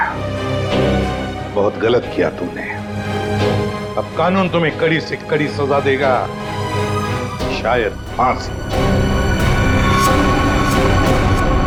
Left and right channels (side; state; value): both; identical; correlation 1.00